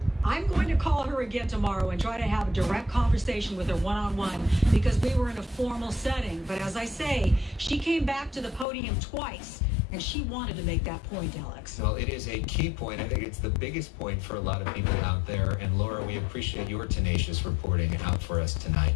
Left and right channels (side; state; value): right; drops out; at 8.7 s